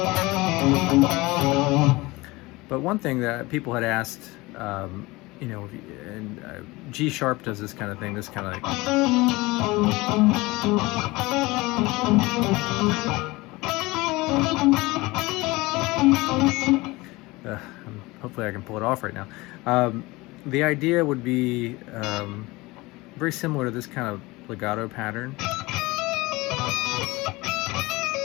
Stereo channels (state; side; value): quieter; right; 21.8 dB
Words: But one thing that people had asked, you know, and G sharp does this kind of thing, this kind of like. Hopefully I can pull it off right now. The idea would be very similar to this kind of legato pattern.